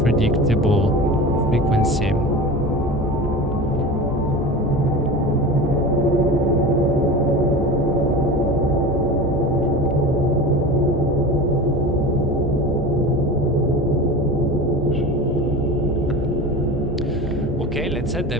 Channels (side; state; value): both; normal; correlation 0.31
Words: frequency. Okay, let's add the